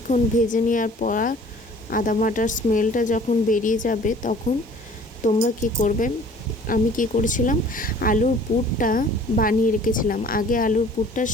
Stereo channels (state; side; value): normal; both; correlation 0.50